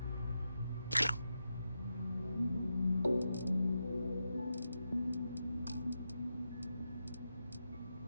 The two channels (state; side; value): inverted; both; correlation -0.88